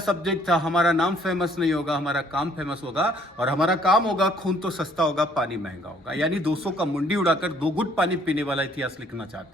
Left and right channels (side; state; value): both; normal; correlation 0.62